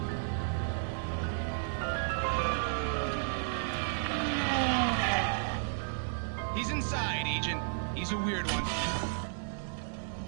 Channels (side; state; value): left; silent; digital silence